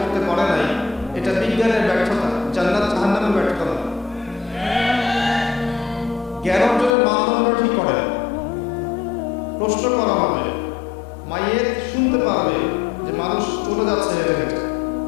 করতে পারে নাই, এটা বিজ্ঞানের ব্যর্থতা, জান্নাত জাহান্নামের ব্যর্থতা নয়। জ্ঞান অর্জনের মানদণ্ড ঠিক করেন। প্রশ্ন করা হবে, মাইয়েত শুনতে পারবে যে মানুষ চলে যাচ্ছে হেঁটে হেঁটে,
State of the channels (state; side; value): drops out; right; at 7.0 s